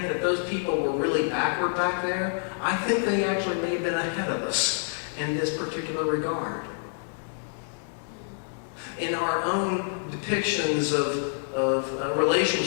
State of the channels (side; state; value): right; silent; digital silence